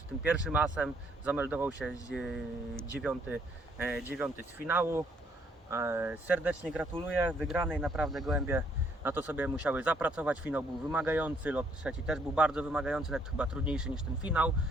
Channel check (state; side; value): normal; both; correlation 0.68